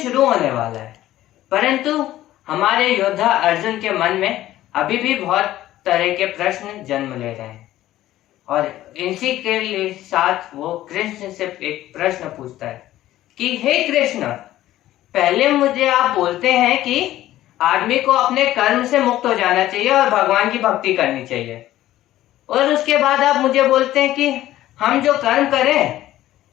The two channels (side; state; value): right; quieter; 14.3 dB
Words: होने वाला है, परंतु हमारे योद्धा अर्जुन के मन में अभी भी बहुत तरह के प्रश्न जन्म ले रहे हैं और इसी के साथ वो कृष्ण से एक प्रश्न पूछता है कि हे कृष्ण, पहले मुझे आप बोलते हैं कि आदमी को अपने कर्म से मुक्त हो जाना चाहिए और भगवान की भक्ति करनी चाहिए, और उसके बाद आप मुझे बोलते हैं कि हम जो कर्म करें